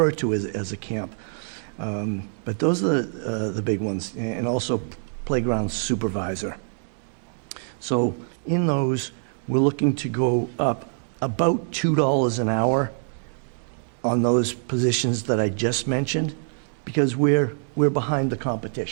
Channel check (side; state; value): left; silent; digital silence